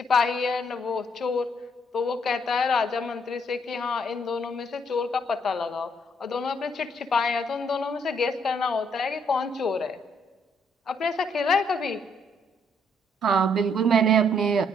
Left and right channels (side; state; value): both; normal; correlation 0.70